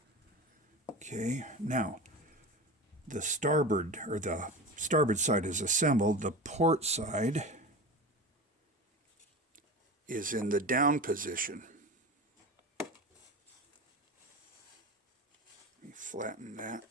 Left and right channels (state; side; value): normal; both; correlation 0.29